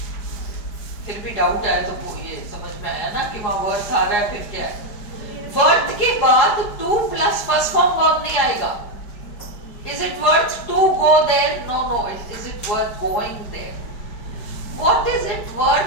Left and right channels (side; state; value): right; late; 4.8 ms